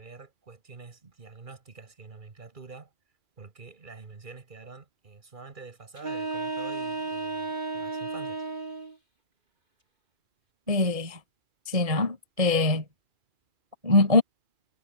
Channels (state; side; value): late; left; 2.4 ms